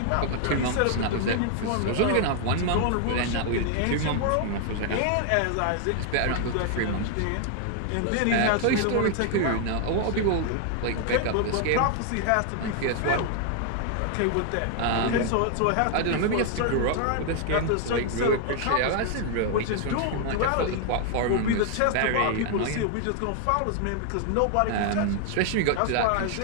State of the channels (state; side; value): different; both; correlation 0.00